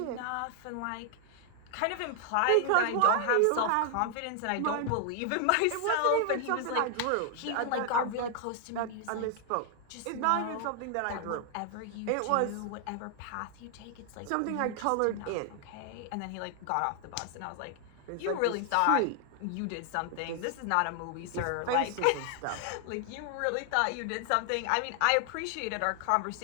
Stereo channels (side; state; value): both; different; correlation 0.00